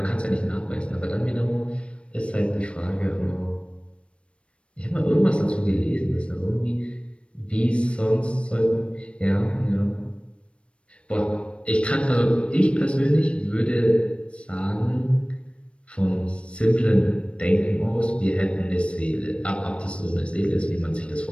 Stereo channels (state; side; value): late; right; 0.059 ms